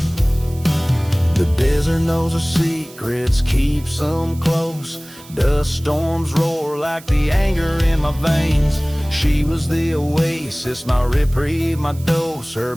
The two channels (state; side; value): noise; right; hiss, 21 dB below the sound